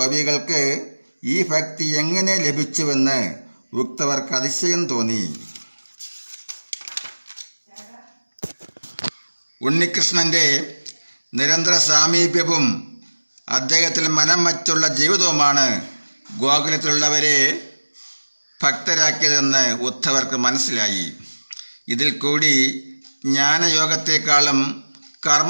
ഈ ഭക്തി എങ്ങനെ ലഭിച്ചുവെന്ന് ഉദ്ധവർക്ക് അതിശയം തോന്നി. ഉണ്ണികൃഷ്ണൻ്റെ നിരന്തര സാമീപ്യവും അദ്ദേഹത്തിൽ മനം വച്ചുള്ള ജീവിതവുമാണ് ഗോകുലത്തിലുള്ളവരെ ഭക്തരാക്കിയതെന്ന് ഉദ്ധവർക്ക് മനസ്സിലായി. ഇതിൽ കൂടി ജ്ഞാനയോഗത്തെക്കാളും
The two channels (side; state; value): both; inverted; correlation -1.00